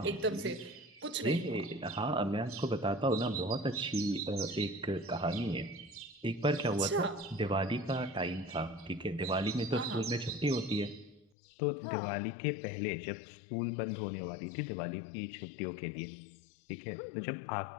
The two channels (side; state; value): right; drops out; at 11.3 s